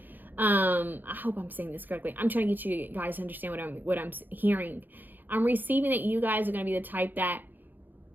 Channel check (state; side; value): late; left; 0.088 ms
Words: I hope I'm saying this correctly. I'm trying to get you guys to understand what I'm hearing. I'm receiving that you guys are going to be the type that